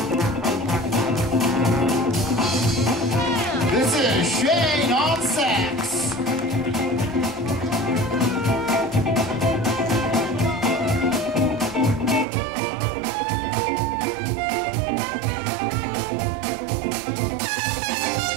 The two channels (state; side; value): drops out; left; at 12.2 s